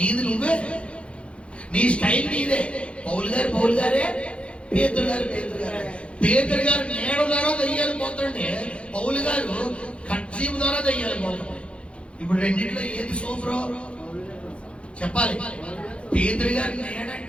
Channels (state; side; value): late; right; 0.059 ms